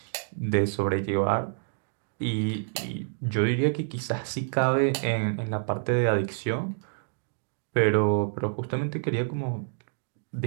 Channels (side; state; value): left; silent; digital silence